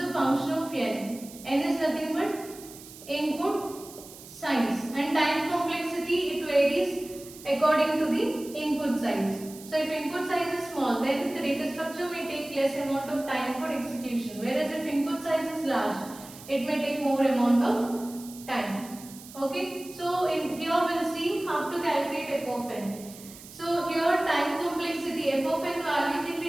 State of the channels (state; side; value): noise; right; hiss, 17 dB below the sound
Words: function of n. N is nothing but input size and time complexity it varies according to the input size. So if input size is small, then the data structure may take less amount of time for execution, whereas if input size is large, it may take more amount of time. Okay, so in here we'll see how to calculate f of n. So here time complexity f of n value can